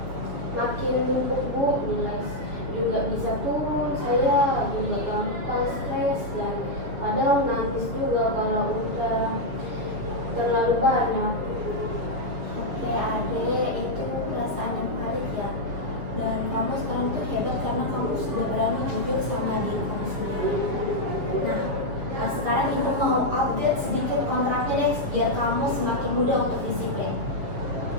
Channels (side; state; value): left; late; 7.1 ms